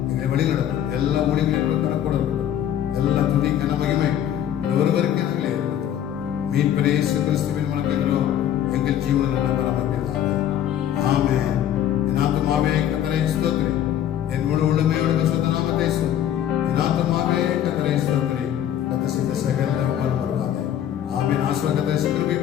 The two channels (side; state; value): right; quieter; 10.6 dB